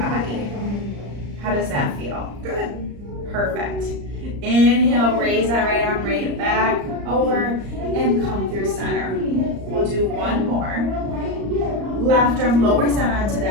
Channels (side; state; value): left; late; 34 ms